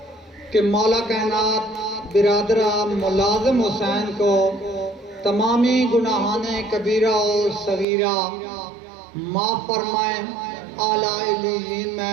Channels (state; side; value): drops out; left; at 7.9 s